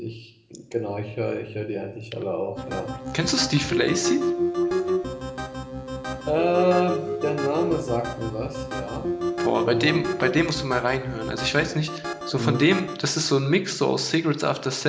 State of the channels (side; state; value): both; identical; correlation 1.00